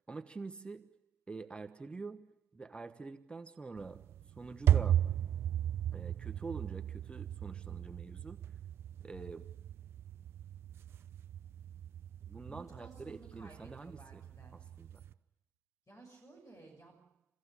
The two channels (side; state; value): left; quieter; 9.5 dB